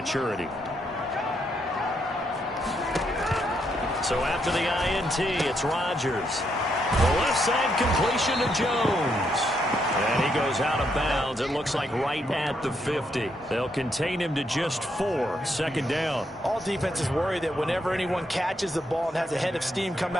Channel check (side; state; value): both; normal; correlation 0.77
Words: So after the INT, it's Rodgers. The left side completion to Jones. And he goes out of bounds. It looks like right at the 50. They'll contain him to just 4. 2nd down. All defenses worry that whenever anyone catches the ball and has a head of steam come